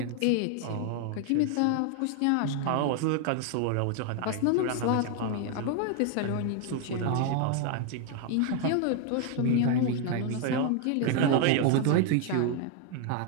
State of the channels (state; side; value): different; both; correlation 0.00